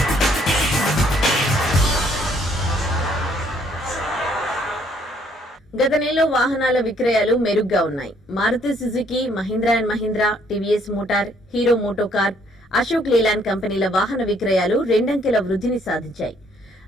గత నెలలో వాహనాల విక్రయాలు మెరుగ్గా ఉన్నాయి. Maruti Suzuki, Mahindra and Mahindra, TVS Motor, Hero MotoCorp, Ashok Leyland కంపెనీల వాహన విక్రయాలు రెండంకెల వృద్ధిని సాధించాయి.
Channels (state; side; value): normal; both; correlation 0.66